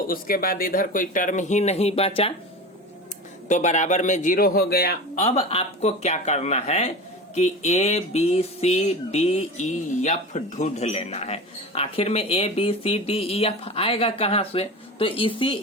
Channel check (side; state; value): both; normal; correlation 0.30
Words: उसके बाद इधर कोई टर्म ही नहीं बचा तो बराबर में 0 हो गया। अब आपको क्या करना है कि ABCDEF ढूंढ लेना है। आखिर में ABCDEF आएगा कहाँ से? तो इसी